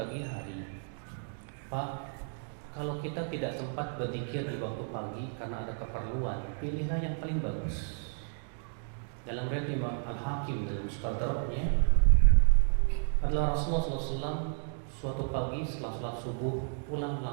hari? Pak, kalau kita tidak sempat berzikir di waktu pagi karena ada keperluan, pilihlah yang paling bagus. Dalam riwayat Imam Al-Hakim dalam Mustadraknya adalah Rasulullah SAW suatu pagi setelah sholat subuh pulang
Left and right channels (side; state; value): left; silent; 56 dB below the other